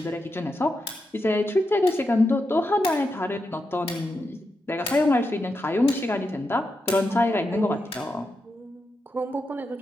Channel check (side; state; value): both; normal; correlation 0.86